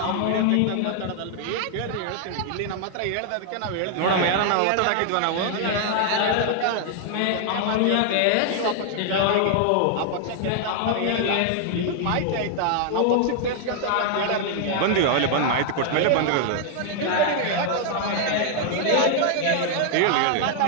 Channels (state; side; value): different; both; correlation 0.00